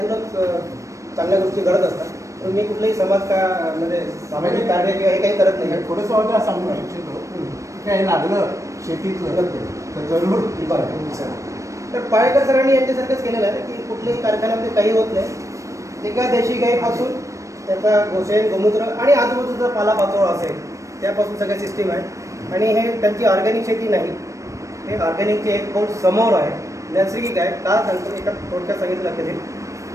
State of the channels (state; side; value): late; left; 0.15 ms